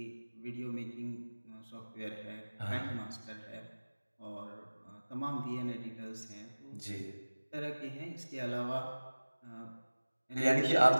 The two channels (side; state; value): both; inverted; correlation -1.00